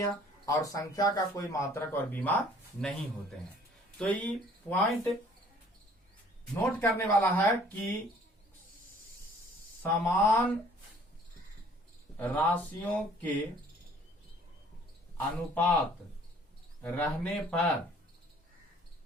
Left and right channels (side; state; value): both; normal; correlation 0.56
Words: और संख्या का कोई मात्रक और बीमा नहीं होते हैं। तो ये पॉइंट नोट करने वाला है कि समान राशियों के अनुपात रहने पर